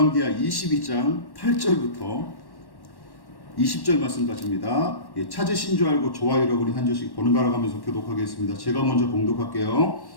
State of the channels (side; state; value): right; late; 1.1 ms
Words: 22장 8절부터 20절 말씀까지입니다. 찾으신 줄 알고 좋아요를 우리 한 절씩 번갈아 가면서 교독하겠습니다. 제가 먼저 봉독할게요.